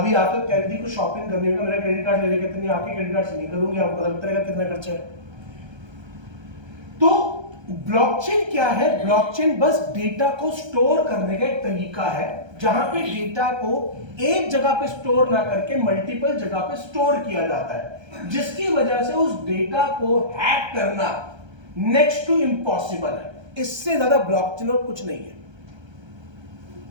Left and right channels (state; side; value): late; left; 1.3 ms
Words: आकर कह रही थी कुछ शॉपिंग करने का, मेरा क्रेडिट कार्ड ले लेके, इतनी आपके क्रेडिट कार्ड से नहीं करूंगी, आपको पता लगेगा कितना खर्चा है। तो ब्लॉकचेन क्या है? ब्लॉकचेन बस डेटा को स्टोर करने का एक तरीका है, जहां पे डेटा को एक जगह पे स्टोर ना करके मल्टीपल जगह पे स्टोर किया जाता है, जिसकी वजह से उस डेटा को हैक करना नेक्स्ट टू इम्पॉसिबल है। इससे ज्यादा ब्लॉकचेन और कुछ नहीं है,